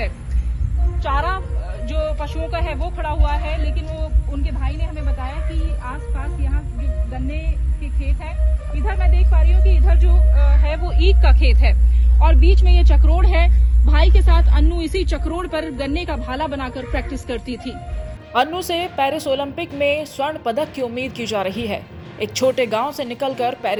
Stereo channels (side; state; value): both; identical; correlation 1.00